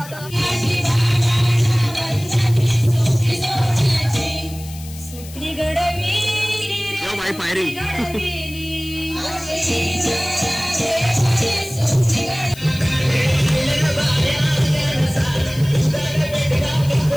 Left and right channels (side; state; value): left; noise; hiss, 17 dB below the sound